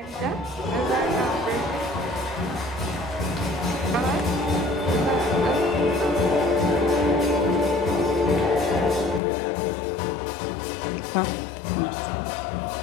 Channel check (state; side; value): drops out; right; at 9.2 s